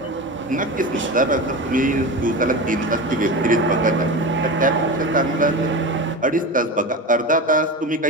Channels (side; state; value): both; normal; correlation 0.26